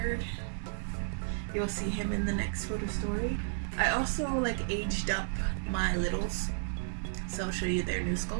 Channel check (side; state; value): left; silent; digital silence